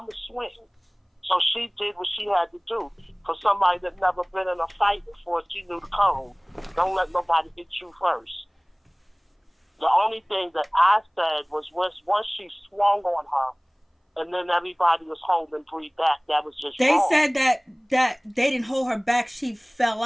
going to swing. So she did what she had to do. For somebody that never been in a fight before, she knew the code. Don't let nobody hit you first. The only thing that I said was once she swung on her, and then everybody was holding Bree back. That was just They wrong. said that they didn't hold her back. She fell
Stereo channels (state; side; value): identical; both; correlation 1.00